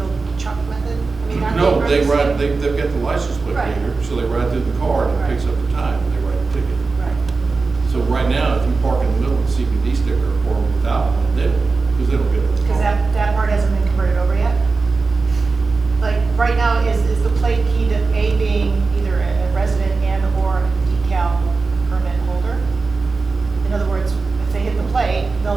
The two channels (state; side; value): quieter; left; 4.1 dB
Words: old chuck method? I mean, aren't No, they running ride, the same? they've got the license plate Right. reader, so they ride through the car and it picks up the time and they write the ticket. Right. So right now, if you park in the middle of the CBD sticker or without one, they don't, because they don't get it. Cause that part hasn't been converted over yet? Like, right now, is the plate key to A being either a resident and or a decal permit holder? In other words, if they hit the plate,